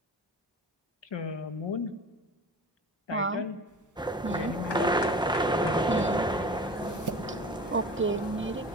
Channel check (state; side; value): normal; both; correlation 0.37